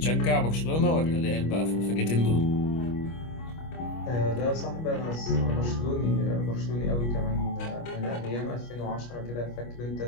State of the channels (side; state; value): right; late; 25 ms